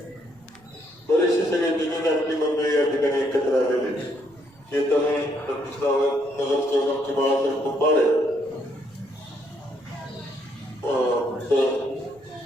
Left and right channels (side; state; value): right; noise; rumble, 30 dB below the sound